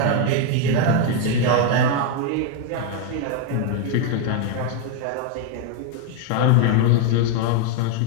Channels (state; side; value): different; both; correlation 0.01